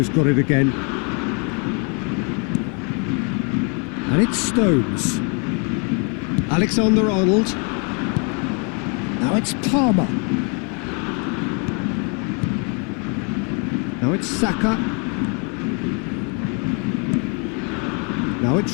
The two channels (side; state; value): right; quieter; 36.4 dB